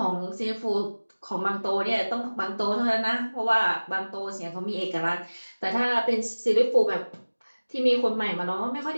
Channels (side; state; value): both; inverted; correlation -1.00